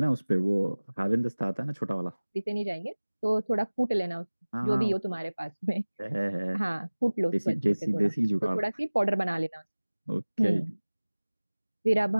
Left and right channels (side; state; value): both; inverted; correlation -1.00